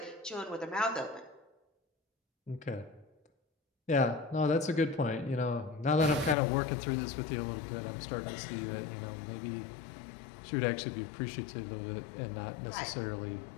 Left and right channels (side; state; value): right; drops out; at 6.4 s